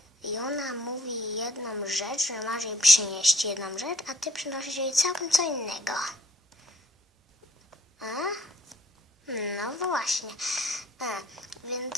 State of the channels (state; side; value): normal; both; correlation 0.61